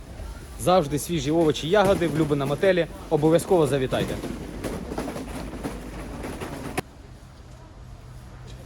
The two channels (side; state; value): both; identical; correlation 1.00